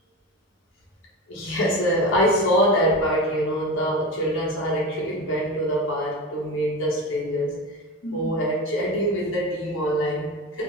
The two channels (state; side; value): normal; both; correlation 0.25